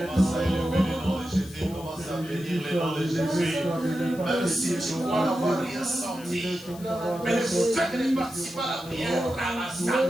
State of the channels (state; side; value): noise; left; hiss, 19 dB below the sound